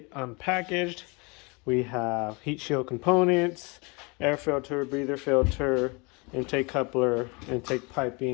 unpackaged. We have heat shield components, air filter, breather filter, intake coupler, intake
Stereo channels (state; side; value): quieter; right; 29.0 dB